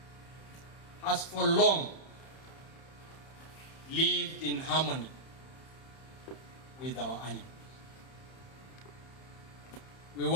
has for long lived in harmony with our animals. We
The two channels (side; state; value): right; late; 31 ms